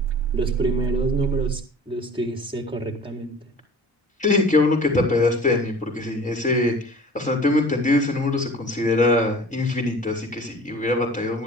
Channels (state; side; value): normal; both; correlation 0.44